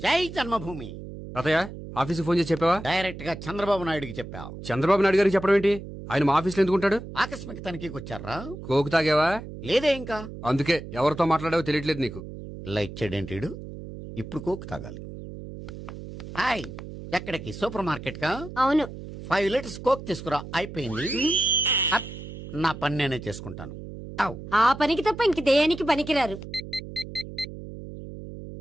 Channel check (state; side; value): noise; right; hum, 11 dB below the sound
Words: జై జన్మభూమి. తాతయ్య, ఆఫీస్కి ఫోన్ చేసి చెప్పావా? డైరెక్ట్ గా చంద్రబాబు నాయుడుకి చెప్పావు. చంద్రబాబు నాయుడు గారికి చెప్పడం ఏంటి? ఆయన మా ఆఫీస్లో ఎందుకుంటాడు? ఆకస్మిక తనిఖీకి వచ్చారా? కోకు తాగావా? లేదే ఇంకా. అందుకే ఎవరితో మాట్లాడావో తెలియట్లేదు నీకు. లైట్ చేయడేంటిడు? ఇప్పుడు కోక్ తాగాలి. హాయ్, ఎక్కడికి? సూపర్ మార్కెట్ కా? అవును. 5 లీటర్స్ కోక్ తీసుకురా. అయిపోయింది. అప్, నా పని నేనే చేసుకుంటాను. ఔ. ఆ పనికి తప్ప ఇంక దేనికి పనికిరారు.